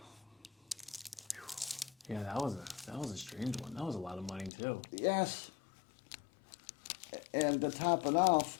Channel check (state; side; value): drops out; right; at 4.5 s